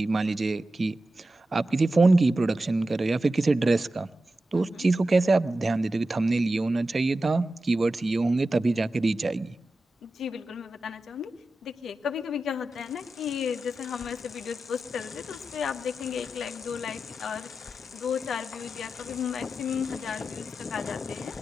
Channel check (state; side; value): normal; both; correlation 0.92